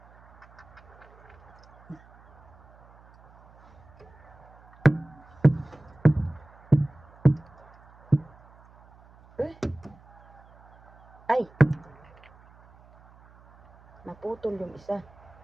Ay, naputol yung isa.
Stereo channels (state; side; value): noise; right; hum, 26 dB below the sound